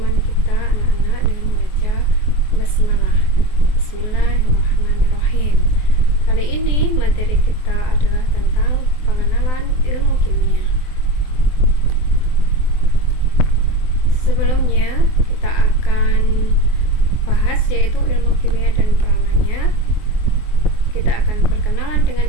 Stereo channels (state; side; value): late; right; 24 ms